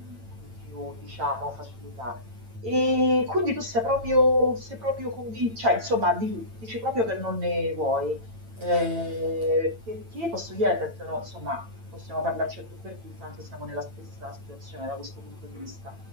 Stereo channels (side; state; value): left; late; 8.9 ms